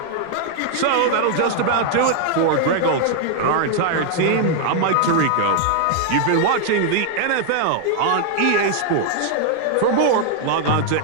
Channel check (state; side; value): different; both; correlation 0.00